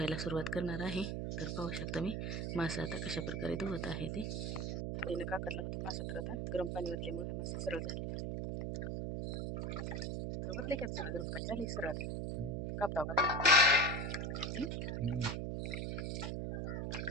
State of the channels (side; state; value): right; noise; hum, 2 dB below the sound